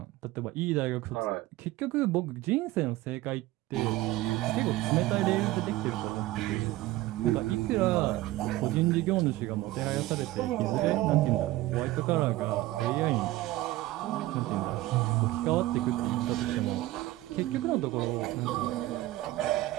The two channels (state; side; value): quieter; left; 17.0 dB